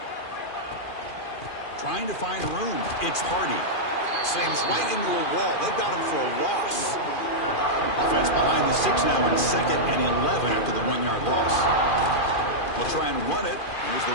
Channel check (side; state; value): right; late; 2.4 ms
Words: Trying to find room. It's Hardy. Slams right into a wall. They've got him for a loss. Offense behind the 6 now in 2nd and 11 after the 1-yard loss. We'll try and run it. Here's the